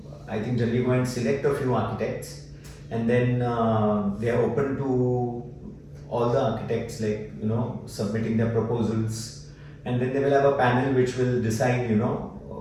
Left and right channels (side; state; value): both; identical; correlation 1.00